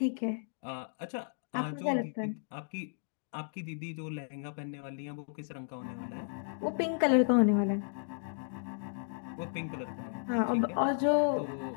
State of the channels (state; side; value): silent; right; digital silence